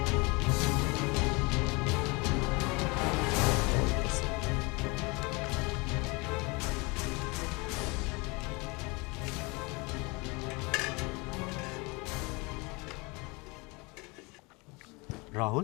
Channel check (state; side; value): quieter; right; 27.4 dB